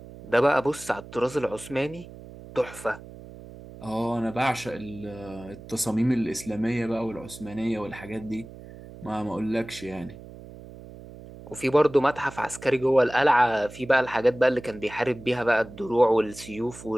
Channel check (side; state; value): right; noise; hum, 16 dB below the sound